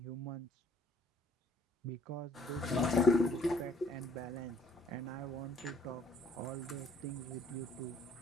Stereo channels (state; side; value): normal; both; correlation 0.62